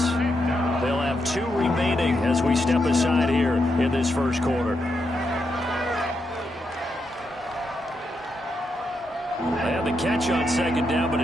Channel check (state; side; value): normal; both; correlation 0.83